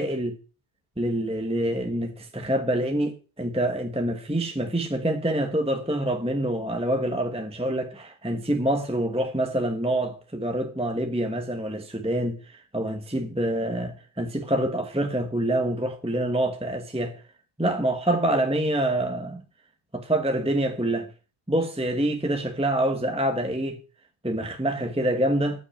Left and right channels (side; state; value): both; normal; correlation 0.59